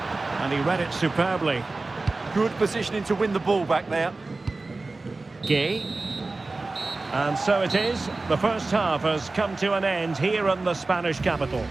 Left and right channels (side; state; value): left; quieter; 3.4 dB